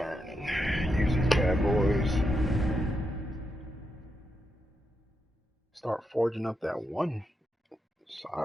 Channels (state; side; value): normal; both; correlation 0.84